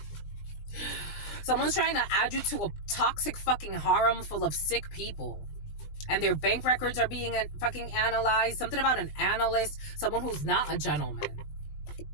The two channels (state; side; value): late; right; 20 ms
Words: Someone's trying to add you to a toxic fucking harem full of sick people. And their bank records are being fucking analyzed. Something about an analyst. Someone who's not a gentleman.